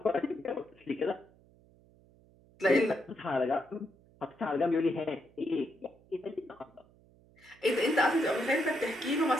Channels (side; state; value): right; noise; hum, 28 dB below the sound